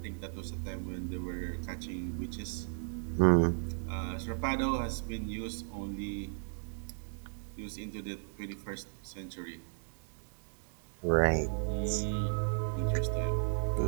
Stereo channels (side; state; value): left; silent; digital silence